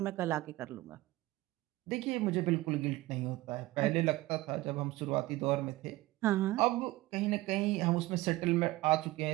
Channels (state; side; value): quieter; left; 18.8 dB